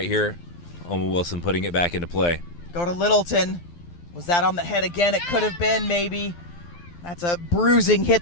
here. Omen Wilson putting it back into play. Go to Littleton. Was that on the head again? It could have been, maybe. That's a bruising hit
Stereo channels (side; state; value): right; late; 12 ms